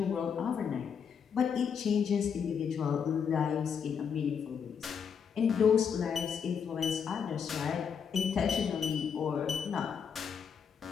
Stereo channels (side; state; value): right; quieter; 7.0 dB